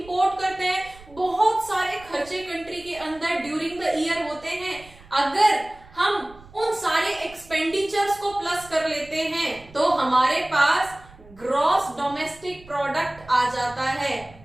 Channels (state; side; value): noise; right; rumble, 22 dB below the sound